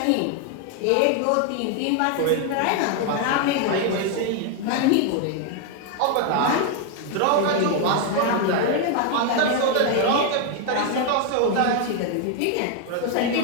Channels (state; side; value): different; both; correlation 0.01